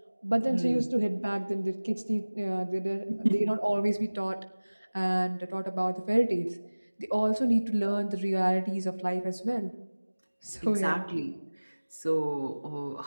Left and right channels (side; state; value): both; inverted; correlation -1.00